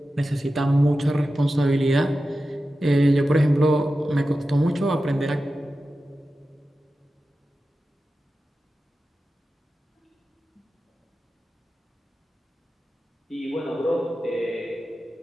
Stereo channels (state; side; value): normal; both; correlation 0.93